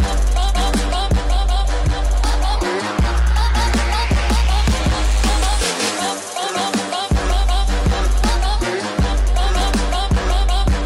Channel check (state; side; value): identical; both; correlation 1.00